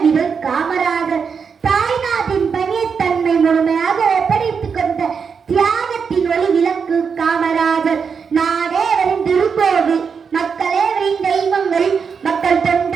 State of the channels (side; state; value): left; quieter; 6.1 dB